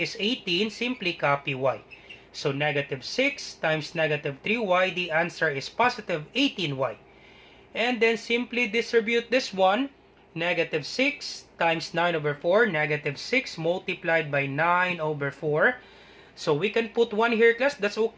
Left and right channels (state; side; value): identical; both; correlation 1.00